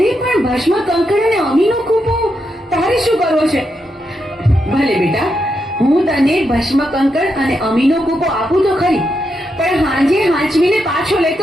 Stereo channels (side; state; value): both; normal; correlation 0.83